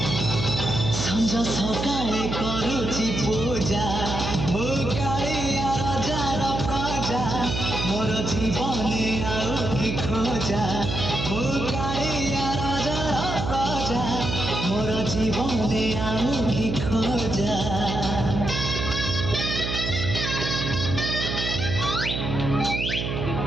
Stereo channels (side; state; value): right; noise; hum, 3 dB below the sound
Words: সঞ্জ সকালে করুছি পূজা মু কালিয়া রাজার প্রজা মোর জীবনে আও কি খোঁজা মু কালিয়া রাজার প্রজা মোর জীবনে আও কি খোঁজা